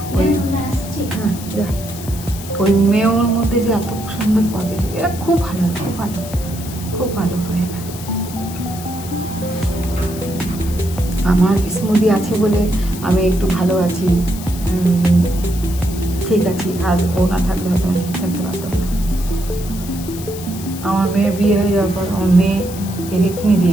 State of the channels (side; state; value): left; noise; hiss, 14 dB below the sound